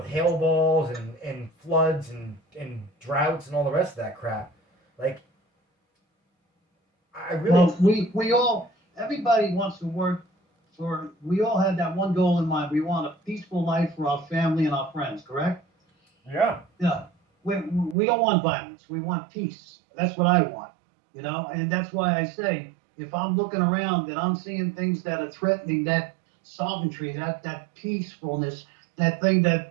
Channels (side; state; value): left; drops out; at 17.9 s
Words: hail balls and floods and droughts and all the rest of that crap. Like, I really. Well, we all, everybody wants to work for, we all had that one goal in mind. We want a peaceful life for our family and our friends, correct? Yeah. Yeah. We don't want violence. We want peace. That's what I want, you know? And that's why I say, if I'm looking around and I'm seeing things that are threatening that sovereignty, that peacefulness, that thing